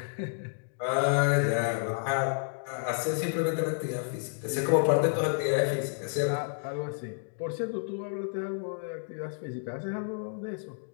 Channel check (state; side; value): silent; right; digital silence